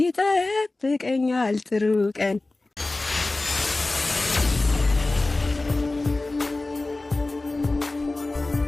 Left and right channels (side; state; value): right; quieter; 3.1 dB